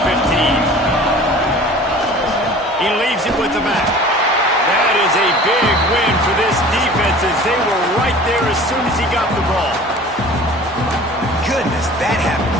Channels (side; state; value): both; normal; correlation 0.44